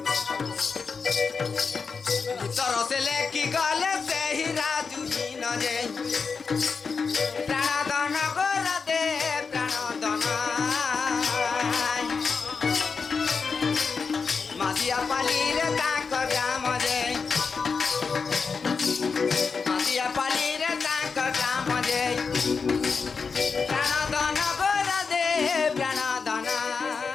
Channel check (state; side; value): quieter; right; 5.2 dB